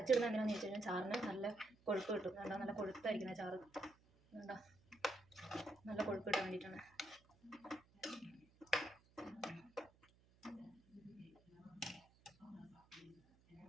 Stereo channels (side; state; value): right; noise; hum, 29 dB below the sound